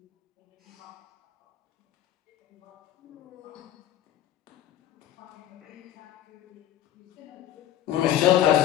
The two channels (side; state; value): right; quieter; 12.1 dB